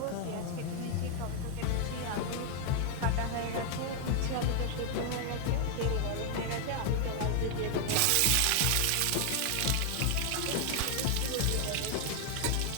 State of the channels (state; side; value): different; both; correlation 0.00